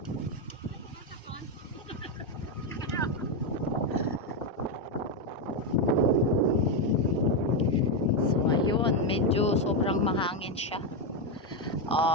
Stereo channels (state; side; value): normal; both; correlation 0.07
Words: Medyo sobrang mahangin siya.